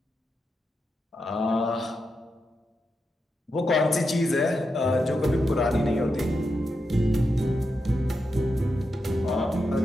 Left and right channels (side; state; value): both; normal; correlation 0.87